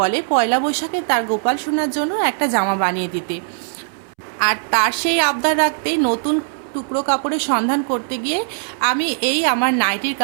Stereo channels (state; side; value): silent; left; 66 dB below the other